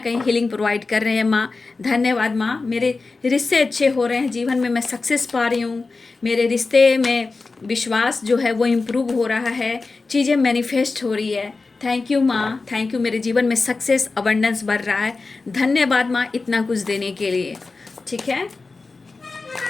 हीलिंग प्रोवाइड कर रहे हैं माँ। धन्यवाद माँ। मेरे रिश्ते अच्छे हो रहे हैं, जीवन में मैं सक्सेस पा रही हूँ, मेरे रिश्ते में विश्वास जो है वो इम्प्रूव हो रहा है, चीज़ें मैनिफेस्ट हो रही है। थैंक यू माँ, थैंक यू। मेरे जीवन में सक्सेस, अबंडेंस बढ़ रहा है। धन्यवाद माँ इतना कुछ देने के लिए। ठीक है,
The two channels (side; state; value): right; quieter; 3.9 dB